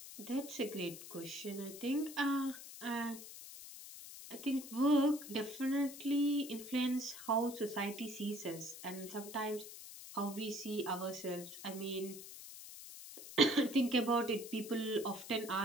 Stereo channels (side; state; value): left; noise; hiss, 13 dB below the sound